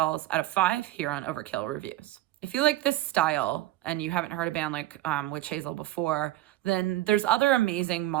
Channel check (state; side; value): quieter; left; 15.9 dB